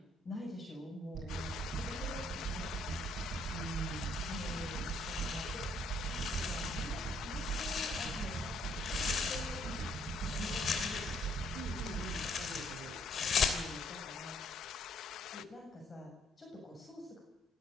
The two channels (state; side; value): normal; both; correlation 0.67